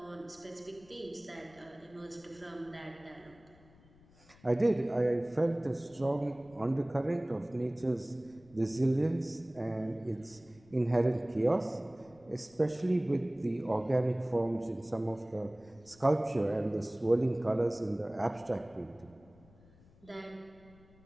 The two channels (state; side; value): noise; left; rumble, 26 dB below the sound